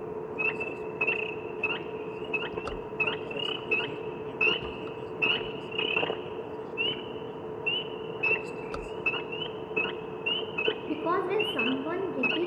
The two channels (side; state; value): both; identical; correlation 1.00